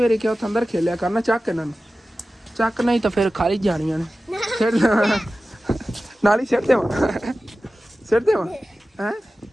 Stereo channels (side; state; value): both; normal; correlation 0.95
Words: ਵਾਰੀ ਕਿਹਾ ਉੱਥੇ ਅੰਦਰ ਖੇਲਿਆ ਕਰਨਾ, ਚੱਕ ਇਹਨਾਂ ਨੂੰ ਚੱਕ, ਨਹੀਂ ਤਾਂ ਫਿਰ ਖਾਲੀ ਜਾਣੀਆਂ ਨੇ। ਸਿਰ ਨਾਲ ਹੀ ਸਿਰ ਦੇਵਾਂ ਹੈਂ,